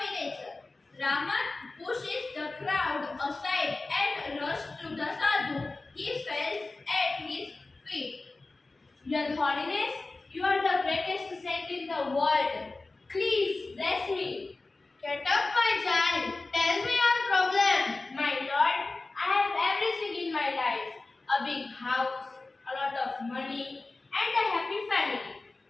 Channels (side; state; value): right; quieter; 3.4 dB